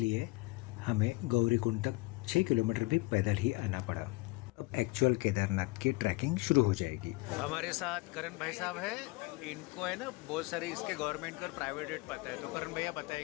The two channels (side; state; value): right; quieter; 23.1 dB